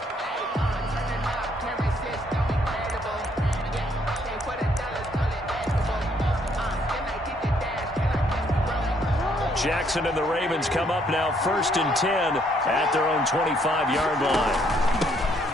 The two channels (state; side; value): normal; both; correlation 0.68